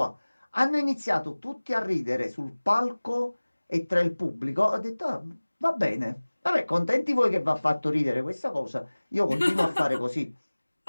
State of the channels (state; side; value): inverted; both; correlation -1.00